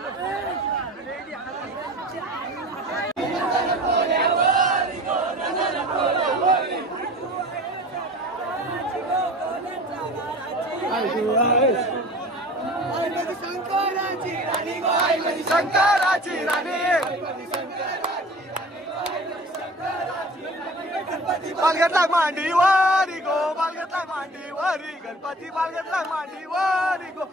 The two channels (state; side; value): normal; both; correlation 0.41